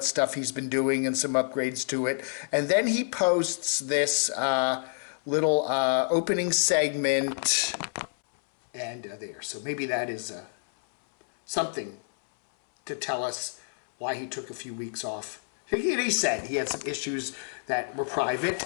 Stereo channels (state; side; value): silent; right; 59 dB below the other